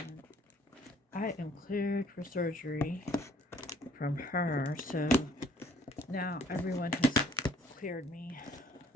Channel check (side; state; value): both; normal; correlation 0.58